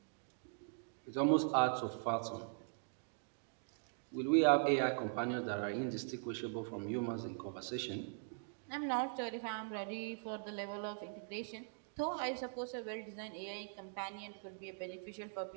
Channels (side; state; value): left; silent; digital silence